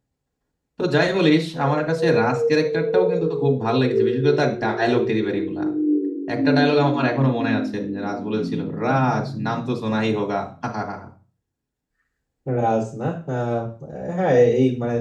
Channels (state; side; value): identical; both; correlation 1.00